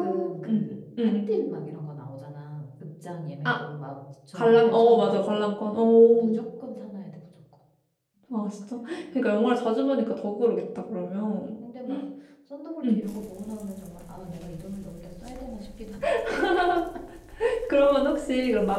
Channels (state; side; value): identical; both; correlation 1.00